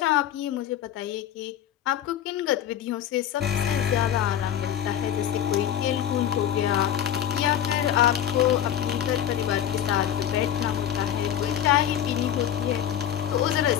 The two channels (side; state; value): right; quieter; 10.3 dB